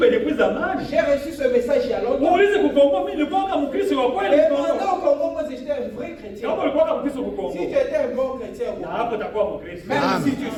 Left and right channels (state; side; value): identical; both; correlation 1.00